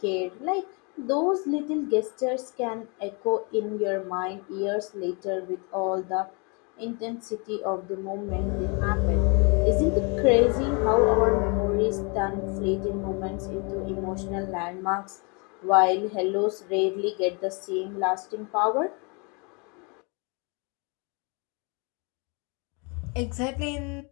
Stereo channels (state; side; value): quieter; right; 32.8 dB